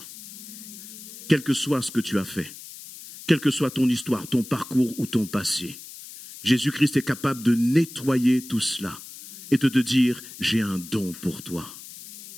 Quel que soit ce que tu as fait, quelle que soit ton histoire, ton parcours ou ton passé, Jésus-Christ est capable de nettoyer tout cela et de te dire, j'ai un don pour toi.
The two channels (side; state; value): left; noise; hiss, 15 dB below the sound